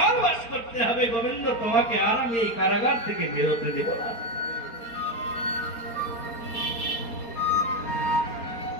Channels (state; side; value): late; right; 4.3 ms